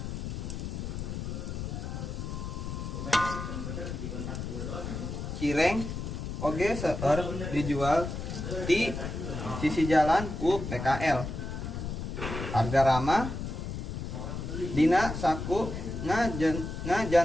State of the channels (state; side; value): noise; left; rumble, 5 dB below the sound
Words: Cireng oge seueur dijual di sisi jalan ku PKL. Harga ramah dina saku